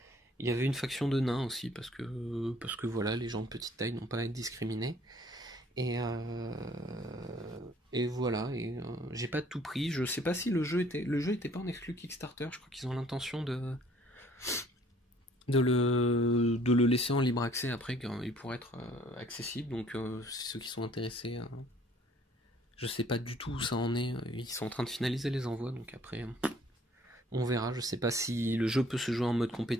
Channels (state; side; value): normal; both; correlation 0.58